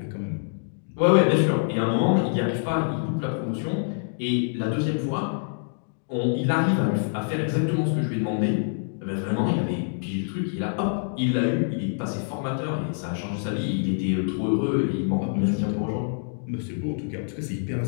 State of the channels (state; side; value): silent; right; digital silence